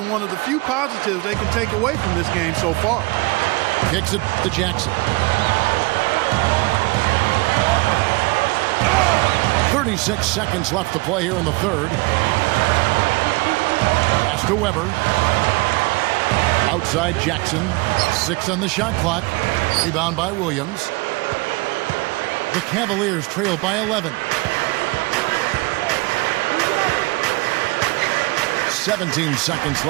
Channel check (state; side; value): quieter; left; 25.3 dB